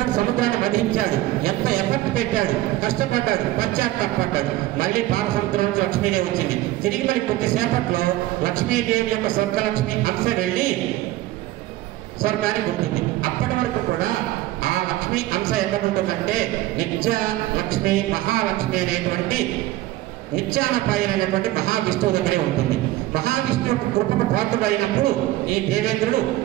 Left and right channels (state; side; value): quieter; left; 16.1 dB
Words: సముద్రాన్ని వధించాడు. ఎంత ఎఫర్ట్ పెట్టాడు, కష్టపడ్డాడు, పశ్చాత్తాపడ్డాడు. మళ్ళీ పాలసముద్రం నుంచి లక్ష్మీదేవి వచ్చింది. తిరిగి మళ్ళీ కొద్దిసేపట్లో లక్ష్మీదేవి యొక్క స్వర్గలక్ష్మి అంశ వెళ్ళి స్వర్గానికి ఉంటుంది. అప్పటి వరకు కూడా ఆ లక్ష్మి అంశ ఎక్కడ ఉంటుందంటే నిత్య లక్ష్మి, మహాలక్ష్మి అనేటువంటి నిత్యానపాయనటువంటి మహావిష్ణువు దగ్గరే ఉంటుంది. మహావిష్ణువు యొక్క కృపకు పాత్రుడైనప్పుడు ఈ దేవేంద్రుడు